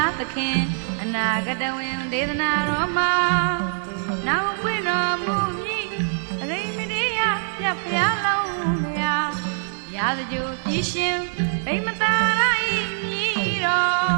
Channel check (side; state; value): left; silent; 57 dB below the other